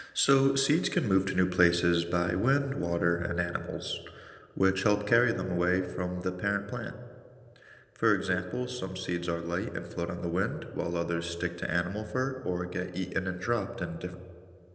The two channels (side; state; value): both; identical; correlation 1.00